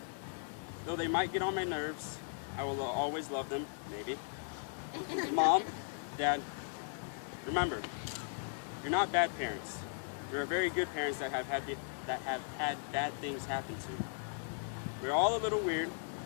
Though they might get on my nerves, I will always love them, maybe. Mom, Dad, remember, you're not bad parents. You're very good parents that have had bad things happen to. We're all a little weird,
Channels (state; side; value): silent; right; digital silence